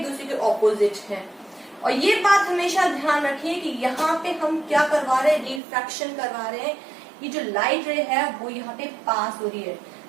दूसरे के ऑपोजिट हैं. और ये बात हमेशा ध्यान रखिए कि यहाँ पे हम क्या करवा रहे हैं? रिफ्रैक्शन करवा रहे हैं. ये जो लाइट रे है वो यहाँ पे पास हो रही है,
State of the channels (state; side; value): drops out; left; at 5.6 s